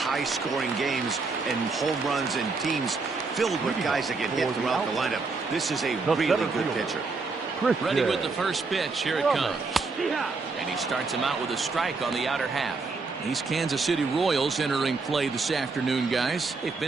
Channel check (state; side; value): quieter; left; 4.1 dB